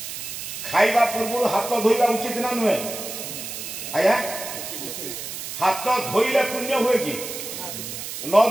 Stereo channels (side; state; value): right; noise; hiss, 8 dB below the sound